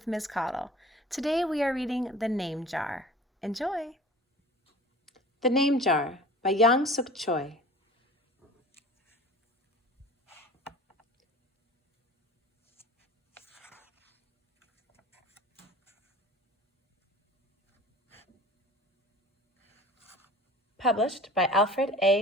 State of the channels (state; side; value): normal; both; correlation 0.42